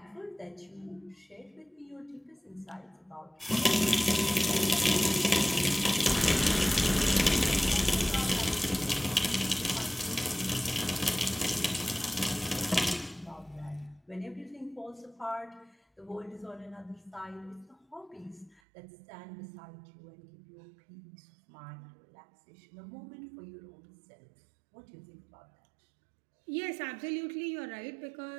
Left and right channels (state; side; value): drops out; left; at 18.6 s